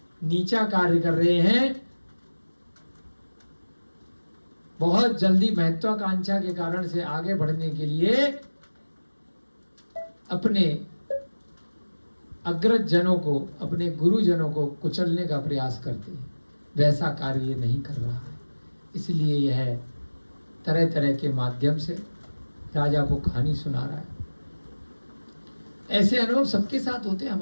नीचा कार्य कर रहे हैं, बहुत जल्दी महत्वाकांक्षा के कारण से आगे बढ़ने के लिए अपने अग्रज जनों को, अपने गुरुजनों को कुचलने का प्रयास करते हैं। वैसा कार्य ये नहीं कर रहा है, इसलिए यह तरह तरह के माध्यम से राजा को कहानी सुना रहा है। ऐसे अनुभव सबके साथ होते हैं,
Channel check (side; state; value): both; inverted; correlation -1.00